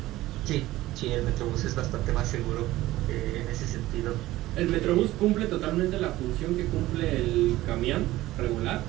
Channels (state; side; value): quieter; left; 16.7 dB